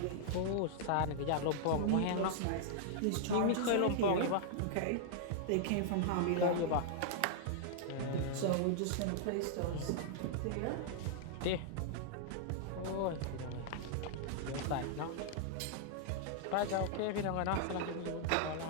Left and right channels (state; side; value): different; both; correlation -0.01